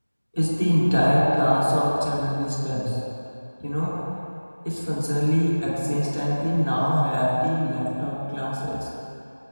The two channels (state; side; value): inverted; both; correlation -1.00